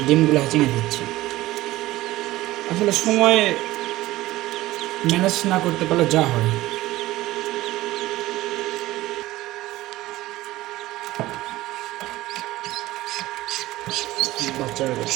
ডিমগুলো হ্যাচিং এ দিচ্ছে। আসলে সময় ম্যানেজ না করতে পারলে যা হয়। বাচ্চারা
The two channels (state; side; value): quieter; left; 17.1 dB